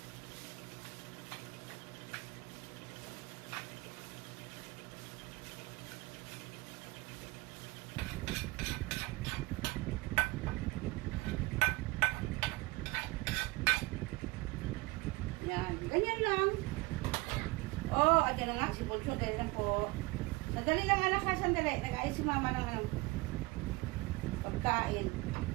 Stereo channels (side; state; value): left; quieter; 23.5 dB